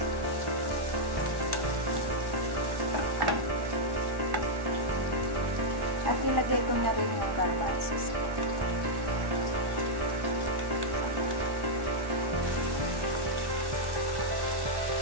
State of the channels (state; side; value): late; left; 1.1 ms